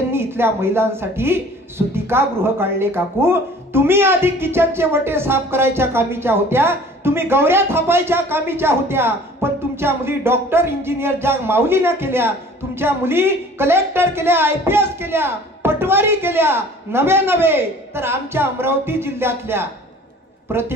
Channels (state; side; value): normal; both; correlation 0.48